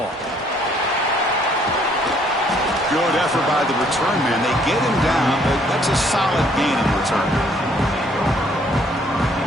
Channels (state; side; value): normal; both; correlation 0.64